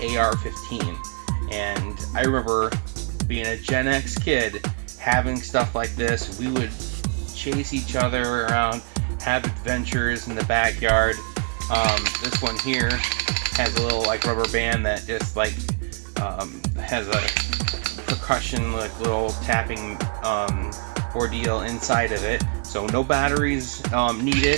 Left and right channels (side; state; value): left; quieter; 36.0 dB